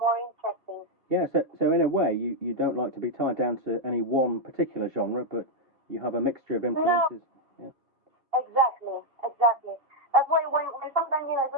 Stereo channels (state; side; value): late; left; 2.7 ms